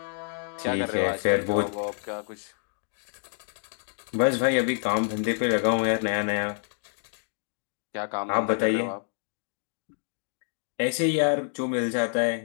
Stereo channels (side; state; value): right; silent; 59 dB below the other